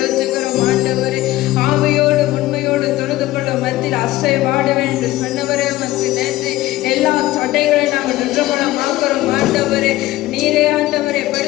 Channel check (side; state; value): right; quieter; 16.7 dB